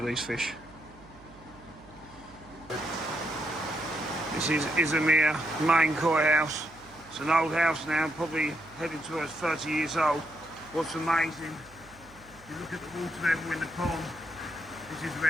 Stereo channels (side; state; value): right; noise; hum, 24 dB below the sound